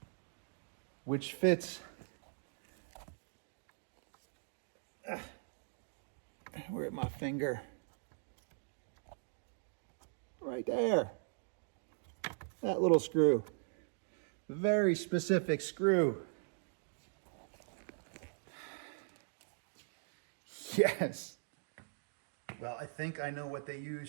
which fits where my finger, right there, that little screw, very specific screw. Yes. Well, I think I know what they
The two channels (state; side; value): silent; left; digital silence